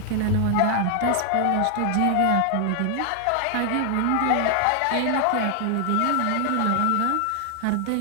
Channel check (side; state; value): both; different; correlation 0.00